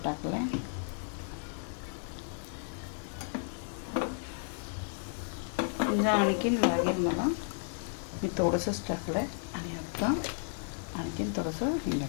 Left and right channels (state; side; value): silent; right; digital silence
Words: टाकलं आहे. हिंग आणखीन लागेल मला, मी थोडंसंच टाकलं आहे. आणि आता आणखीन थोडंसं हिंग